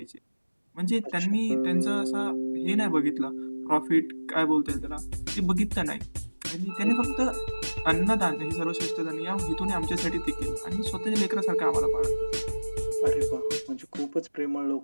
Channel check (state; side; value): inverted; both; correlation -1.00